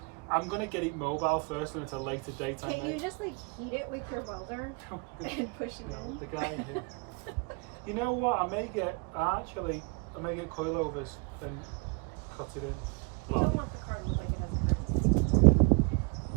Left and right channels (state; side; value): quieter; left; 32.1 dB